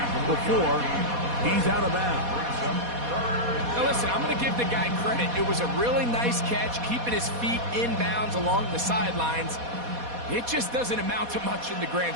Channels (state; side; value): late; left; 4.2 ms